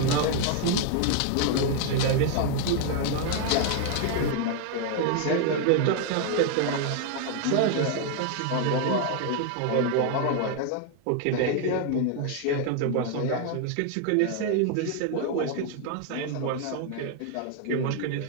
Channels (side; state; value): both; different; correlation 0.00